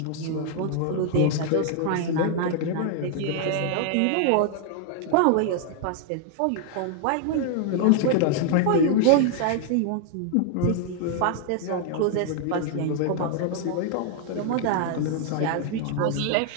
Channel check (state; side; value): different; both; correlation 0.00